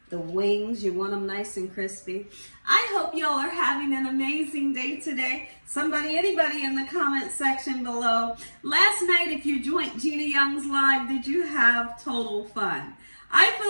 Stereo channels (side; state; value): both; inverted; correlation -1.00